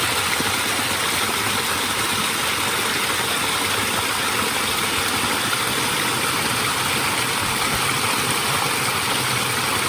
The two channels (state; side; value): identical; both; correlation 1.00